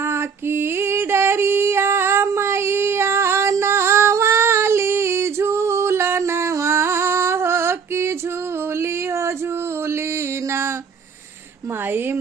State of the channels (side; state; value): left; quieter; 6.2 dB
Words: की डरिया मैया नवाली झूलनवा हो कि झूली हो झूली ना। माई